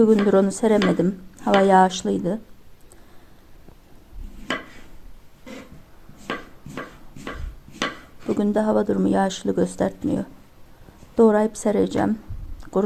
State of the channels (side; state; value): both; identical; correlation 1.00